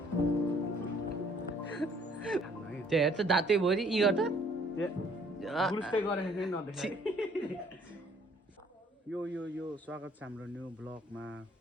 त्यो हेर त दाँतै भरि यी गर्दा यो स्वागत छ हाम्रो न्यू ब्लगमा।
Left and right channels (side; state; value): both; normal; correlation 0.61